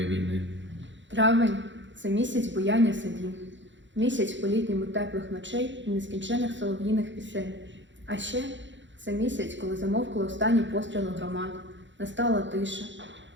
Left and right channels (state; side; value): late; left; 0.54 ms